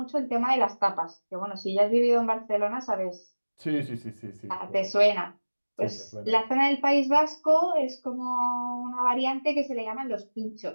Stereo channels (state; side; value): inverted; both; correlation -1.00